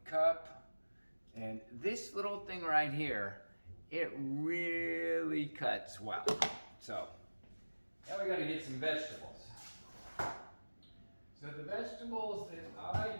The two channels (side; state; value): both; inverted; correlation -1.00